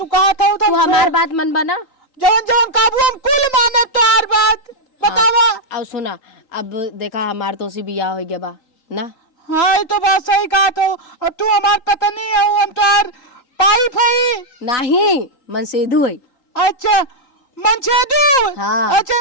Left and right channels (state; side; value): late; right; 3.8 ms